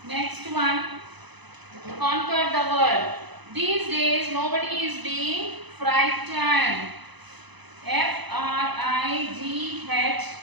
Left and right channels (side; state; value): left; late; 1.0 ms